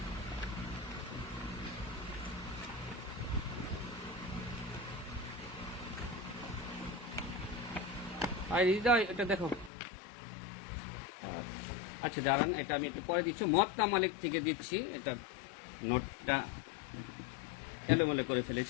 এটা দেখো। আচ্ছা দাঁড়ান, এটা আমি একটু পরে দিচ্ছি। মুয়াত্তা মালিক থেকে দিচ্ছি, এটা নোটটা এলোমেলো করে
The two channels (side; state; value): right; drops out; at 9.7 s